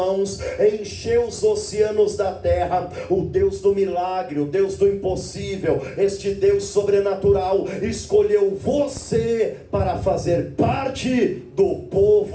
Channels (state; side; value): identical; both; correlation 1.00